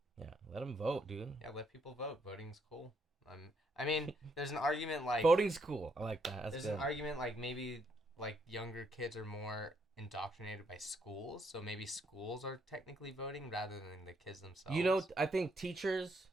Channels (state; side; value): normal; both; correlation 0.73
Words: Yeah, let them vote, dude. Yeah, let people vote. Voting's cool. I mean, there's an argument like... Voting's cool. I like that. There's an argument like maybe like younger kids are more indoctrinated by schools, so maybe schools are technically voting rather than the kids themselves. You know, I think